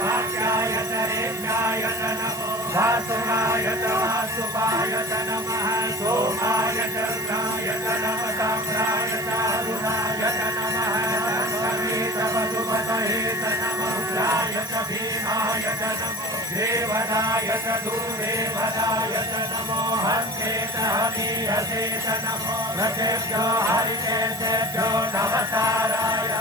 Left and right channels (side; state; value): right; noise; hiss, 13 dB below the sound